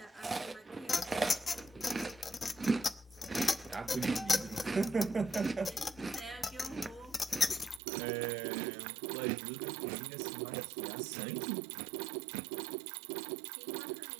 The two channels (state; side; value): drops out; left; at 7.8 s